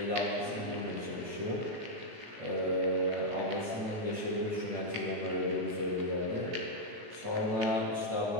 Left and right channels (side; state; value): left; late; 18 ms